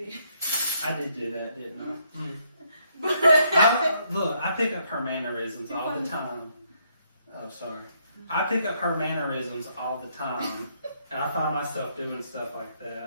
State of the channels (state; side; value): inverted; both; correlation -0.72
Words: I did do that, didn't I? Look, I pick up her mannerisms all the time. Oh, sorry. I pick up her mannerisms all the time, and I find myself doing stuff like